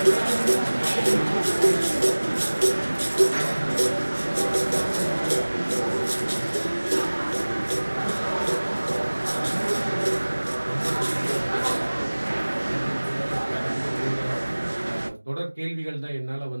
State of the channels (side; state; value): both; inverted; correlation -1.00